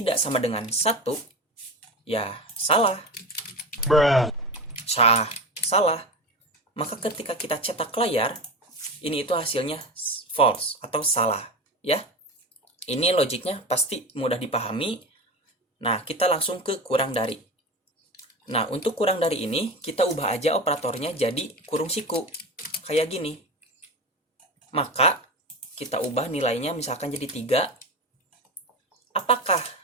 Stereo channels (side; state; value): both; normal; correlation 0.25